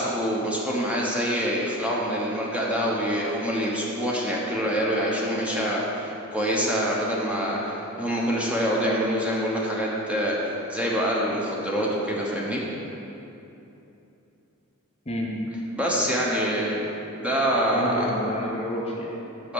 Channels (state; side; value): normal; both; correlation 0.31